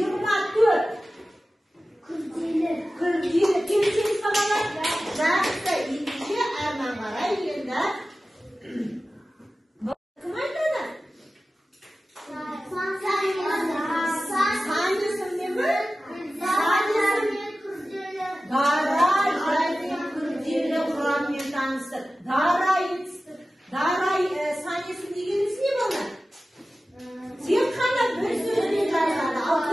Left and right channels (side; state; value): both; normal; correlation 0.95